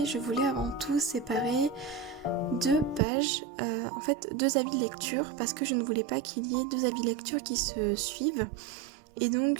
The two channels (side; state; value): left; drops out; at 3.0 s